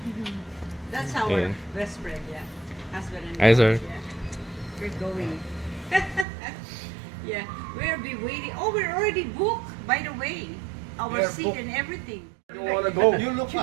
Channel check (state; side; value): drops out; left; at 6.2 s